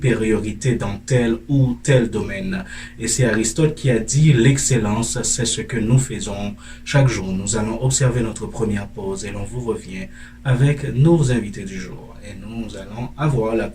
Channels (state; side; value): identical; both; correlation 1.00